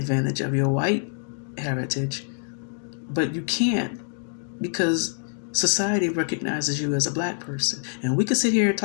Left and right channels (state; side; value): silent; right; digital silence